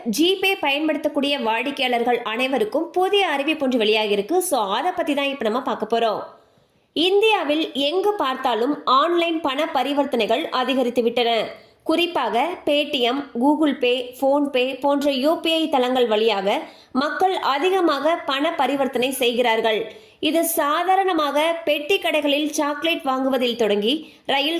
ஜிபே பயன்படுத்தக்கூடிய வாடிக்கையாளர்கள் அனைவருக்கும் புதிய அறிவிப்பு ஒன்று வெளியாகி இருக்கு. ஸோ அதை பத்தி தான் இப்போ நம்ம பார்க்க போறோம். இந்தியாவில் எங்கு பார்த்தாலும் ஆன்லைன் பண பரிவர்த்தனைகள் அதிகரித்து விட்டன. குறிப்பாக பேடிஎம், கூகுள் பே, போன்பே போன்ற யூபிஐ தளங்கள் வழியாக மக்கள் அதிகமாக பண பரிவர்த்தனை செய்கிறார்கள். இது சாதாரணமாக பெட்டி கடைகளில் சாக்லேட் வாங்குவதில் தொடங்கி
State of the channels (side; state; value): both; identical; correlation 1.00